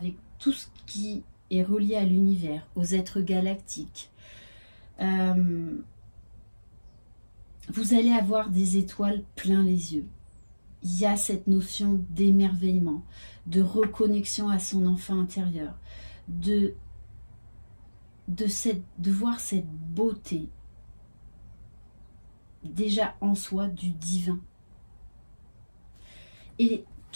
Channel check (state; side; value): inverted; both; correlation -1.00